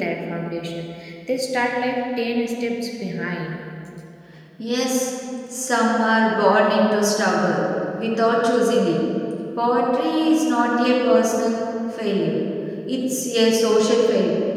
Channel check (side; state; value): both; identical; correlation 1.00